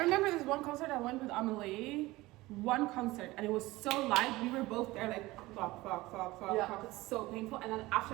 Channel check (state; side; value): quieter; left; 19.6 dB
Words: remember this one concert I went with Amelie. One concert, and it was so loud. We were both there, like fuck, Yeah. fuck. It's so painful. And then